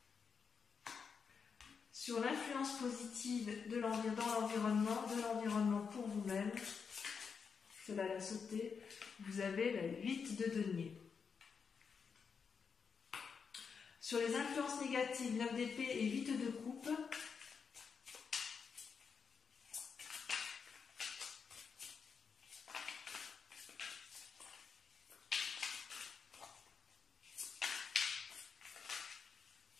Sur l'influence positive dans l'environnement pour vous-même, cela l'a sauté, vous avez la 8 de denier. Sur les influences négatives, 9 d'épée et 8 de coupe,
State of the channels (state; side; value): quieter; right; 6.0 dB